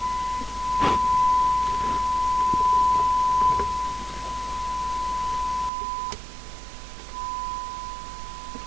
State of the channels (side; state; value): left; drops out; at 5.7 s